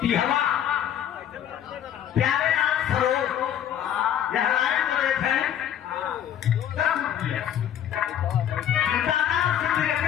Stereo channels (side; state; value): right; quieter; 10.1 dB